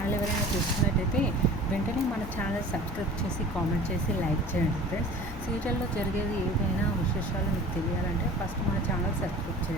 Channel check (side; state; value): both; normal; correlation 0.42